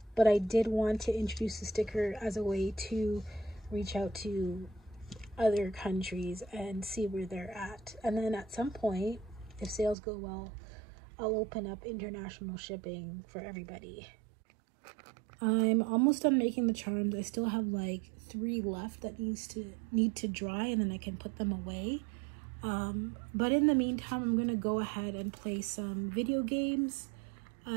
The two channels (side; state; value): left; drops out; at 10.0 s